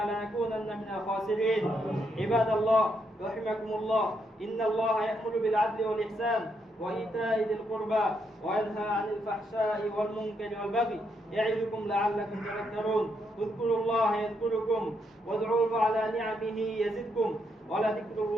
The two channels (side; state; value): both; normal; correlation 0.77